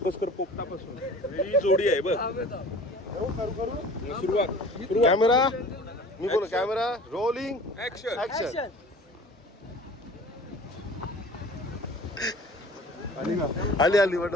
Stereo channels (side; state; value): both; normal; correlation 0.44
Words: कर, पोपटापासून. ही जोडी आहे बघ. सुरुवात. कॅमेरा मी बोल. Camera rolling action. ऍक्शन. आली आली वाटत.